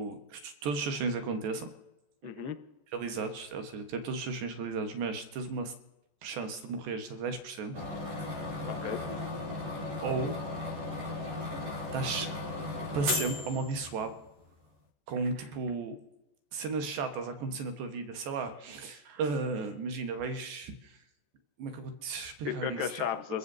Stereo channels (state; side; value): late; left; 14 ms